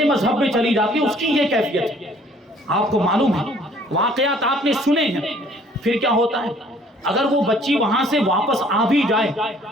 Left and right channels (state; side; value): normal; both; correlation 0.58